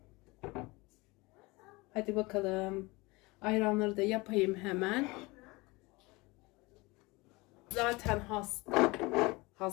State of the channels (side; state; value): right; quieter; 23.9 dB